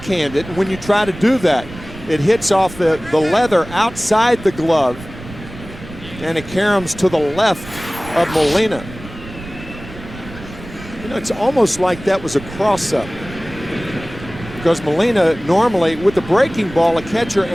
it. When you try to do that, it hits off the leather outside the glove, and it caroms to the left of Molina. You know, it's almost like that was a cross-up, because Molina normally with the breaking ball, a catcher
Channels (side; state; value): right; noise; rumble, 15 dB below the sound